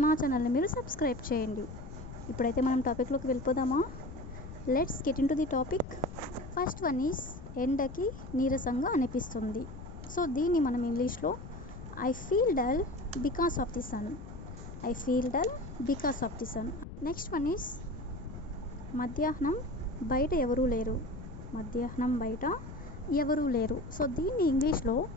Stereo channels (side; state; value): left; noise; rumble, 12 dB below the sound